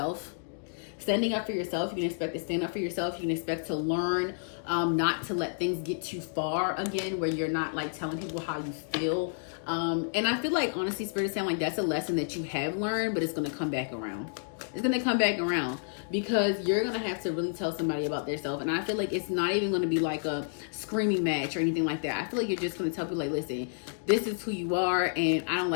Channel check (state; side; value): silent; right; digital silence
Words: Standing up for yourself, you can expect to stand up for yourself. You can expect to learn not to let things get too far again, where you're not like telling people how you feel. And I feel like, honestly, Spirit is saying like that's a lesson that you have learned, but it's going to come back around. It's going to come back around because you're going to have to really tell somebody about themselves. And I feel like it's not even going to be like a screaming match or anything like that. I feel like you're just going to tell people like, listen, this is who you are and I don't